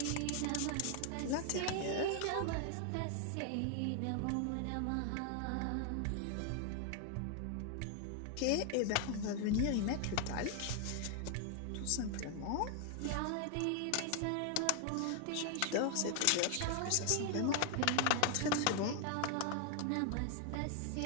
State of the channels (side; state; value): both; different; correlation 0.00